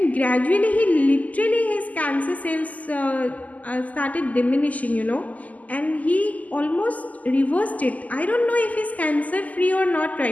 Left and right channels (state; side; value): late; right; 0.076 ms